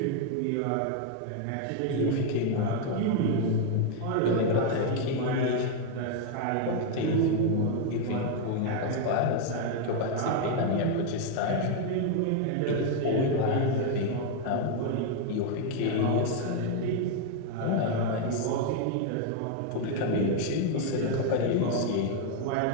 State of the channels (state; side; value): different; both; correlation 0.01